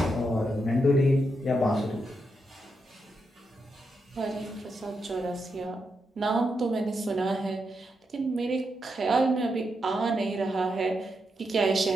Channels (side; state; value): both; normal; correlation 0.84